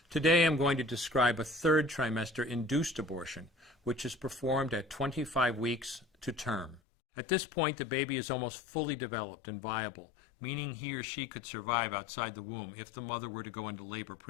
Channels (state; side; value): drops out; right; at 6.8 s